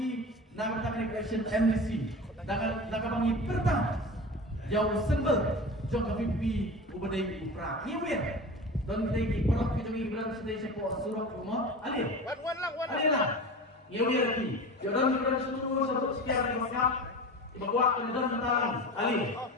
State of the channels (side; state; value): both; normal; correlation 0.32